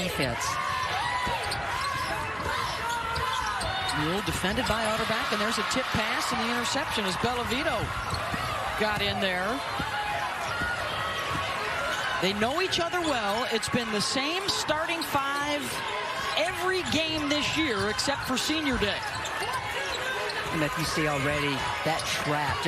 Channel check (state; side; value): identical; both; correlation 1.00